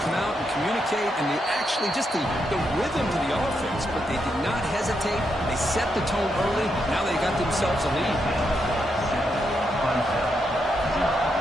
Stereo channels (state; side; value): normal; both; correlation 0.81